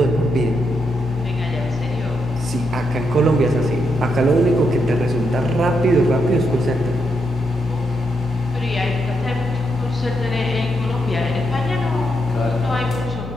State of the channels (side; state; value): both; normal; correlation 0.81